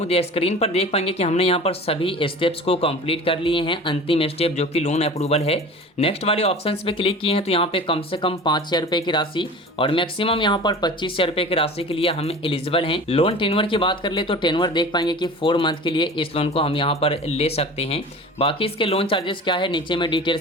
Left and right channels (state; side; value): normal; both; correlation 0.38